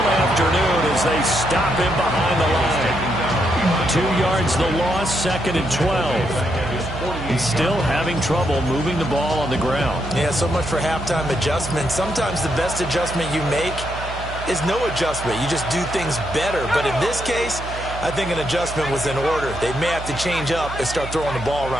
afternoon as they stop him behind the line. 2 yards the loss, 2nd and 12. He's still having trouble moving the ball on the ground. Yeah, so much for halftime adjustment. Sometimes the best adjustment you make is no adjustment. You just do things better. But in this case, I think an adjustment was in order. They may have to change up and start throwing the ball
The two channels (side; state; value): right; noise; hum, 9 dB below the sound